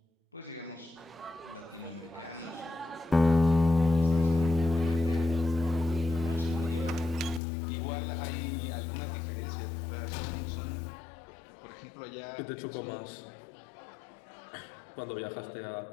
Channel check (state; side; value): drops out; right; at 7.4 s